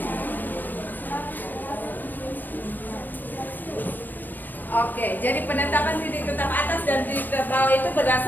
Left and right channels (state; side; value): late; right; 0.090 ms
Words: Oke, jadi penetapan titik tetap atas dan titik tetap bawah itu